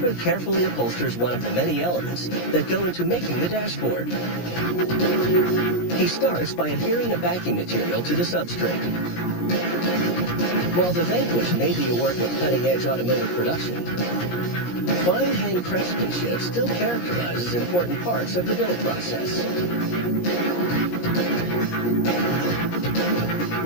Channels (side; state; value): right; late; 17 ms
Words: carefully upholsters one of the many elements that go into making the dashboard. He starts by adhering the backing material to the substrate. While the Vanquish may be a work of cutting-edge automotive production, fine hand craftsmanship still characterizes important parts of the build process.